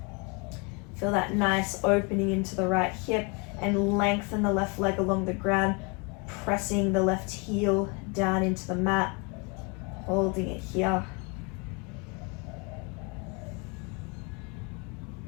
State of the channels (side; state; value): right; quieter; 31.2 dB